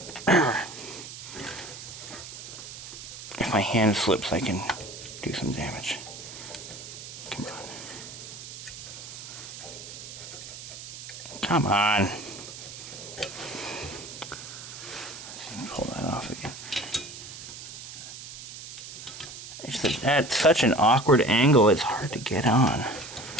If my hand slips, I can do some damage. Come on. Come on. Let's pull that off again. It's at such an awkward angle, it's hard to get on.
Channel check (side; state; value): right; noise; hiss, 12 dB below the sound